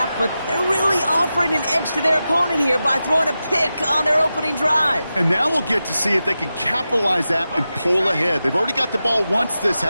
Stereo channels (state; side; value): inverted; both; correlation -0.92